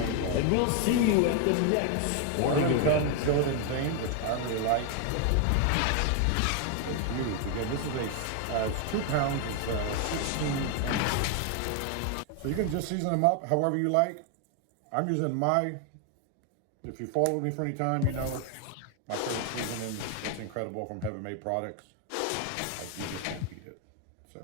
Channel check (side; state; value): both; different; correlation 0.01